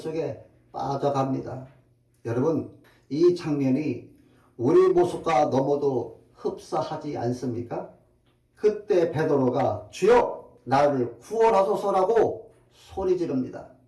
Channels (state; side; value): identical; both; correlation 1.00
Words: 빠져갑니다. 여러분, 이 장면이 우리 모습과 너무도 흡사하지 않습니까? 그때 베드로가 주여 나를 구원하소서라고 소리 지릅니다.